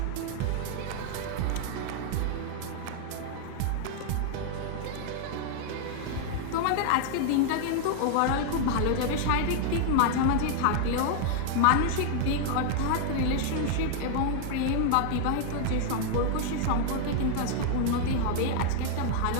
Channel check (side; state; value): both; different; correlation 0.00